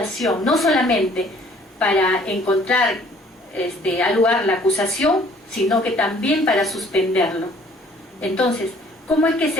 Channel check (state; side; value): normal; both; correlation 0.57